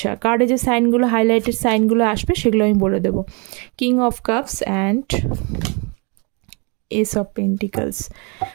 কার্ডে যে সাইনগুলো, হাইলাইটেড সাইনগুলো আসবে সেগুলো আমি বলে দেবো। King of cups and S of pentacles.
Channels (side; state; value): left; quieter; 33.2 dB